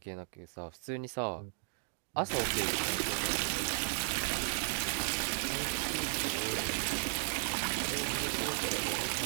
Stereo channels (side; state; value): left; silent; 54 dB below the other